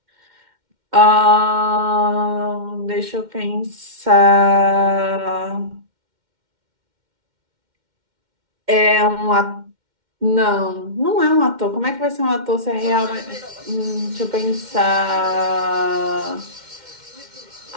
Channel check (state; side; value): late; left; 2.1 ms